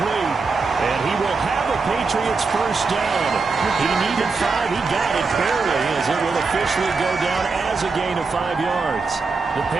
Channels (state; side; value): quieter; left; 4.4 dB